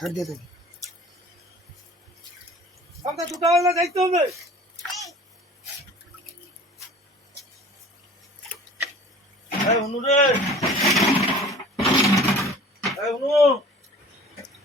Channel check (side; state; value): both; normal; correlation 0.45